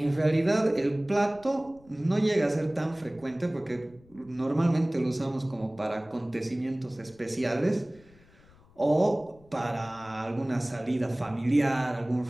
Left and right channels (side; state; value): left; noise; rumble, 27 dB below the sound